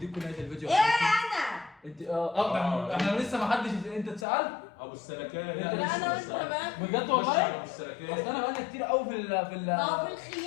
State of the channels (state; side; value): drops out; right; at 4.2 s